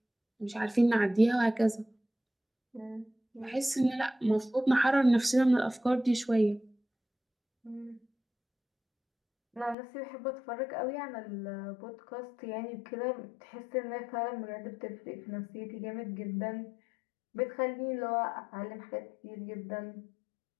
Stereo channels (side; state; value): right; drops out; at 9.8 s